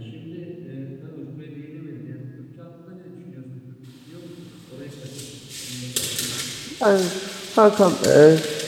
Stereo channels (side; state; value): both; identical; correlation 1.00